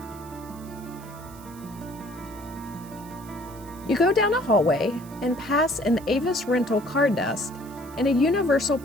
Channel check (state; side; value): noise; right; hiss, 21 dB below the sound